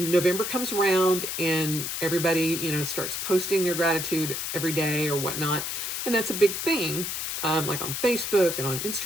comes around and everybody, starts posting their gratitude every day or whatnot. And that's a big thing, like on Facebook and on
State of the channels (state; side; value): noise; left; hiss, 3 dB below the sound